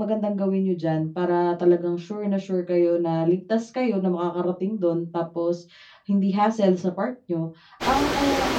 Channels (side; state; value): both; identical; correlation 1.00